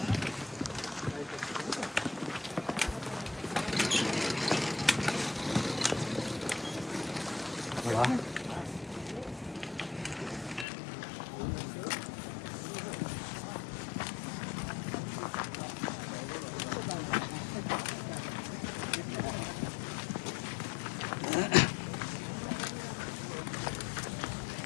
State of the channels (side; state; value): right; drops out; at 10.7 s